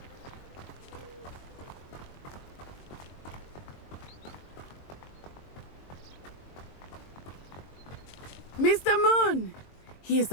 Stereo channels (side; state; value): right; late; 22 ms